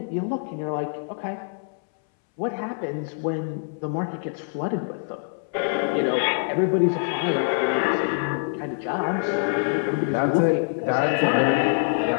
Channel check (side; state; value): right; silent; 62 dB below the other